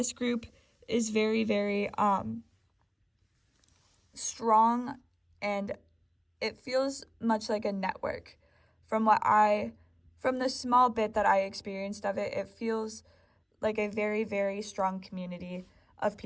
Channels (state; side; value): identical; both; correlation 1.00